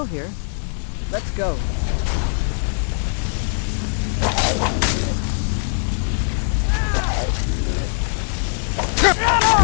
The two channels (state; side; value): silent; right; 63 dB below the other